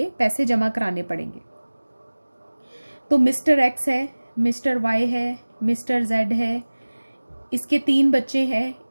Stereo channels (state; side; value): inverted; both; correlation -1.00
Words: पैसे जमा कराने पड़ेंगे। तो मिस्टर X है, मिस्टर Y है, मिस्टर Z है, इसके 3 बच्चे हैं,